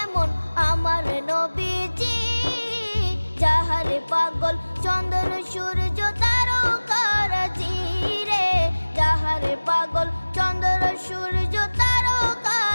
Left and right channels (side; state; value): both; inverted; correlation -1.00